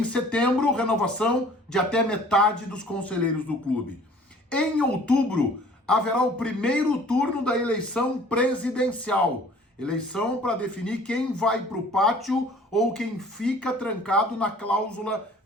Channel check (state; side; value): normal; both; correlation 0.51